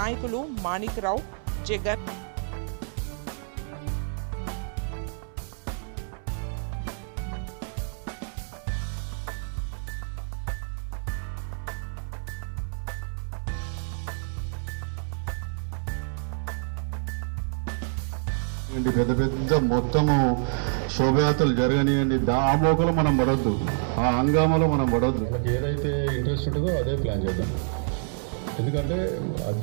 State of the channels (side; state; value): left; silent; 59 dB below the other